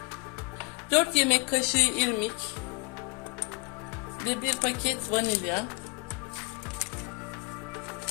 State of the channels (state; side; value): quieter; right; 28.0 dB